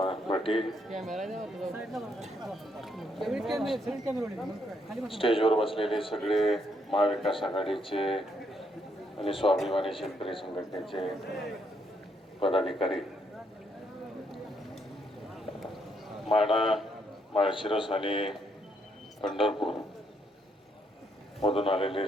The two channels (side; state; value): both; normal; correlation 0.74